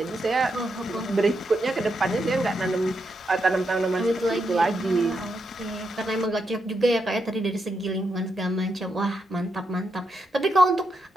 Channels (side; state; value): both; normal; correlation 0.83